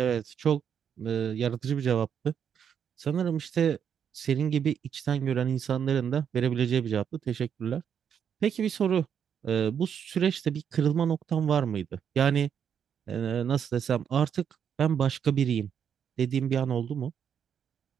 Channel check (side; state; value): left; quieter; 8.0 dB